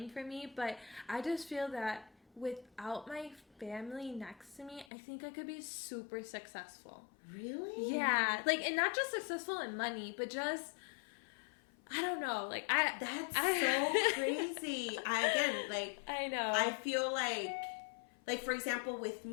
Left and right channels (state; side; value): drops out; right; at 4.9 s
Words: for me, but I just feel that without my family next to me, I think I could be super successful. Really? Yeah. Like, and not just successful in money, but just, I don't know. Like, that's so crazy. I know. I feel like, for example, with